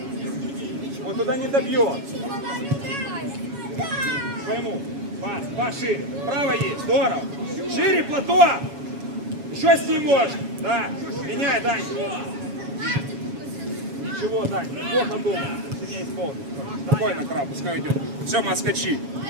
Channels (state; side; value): late; left; 7.2 ms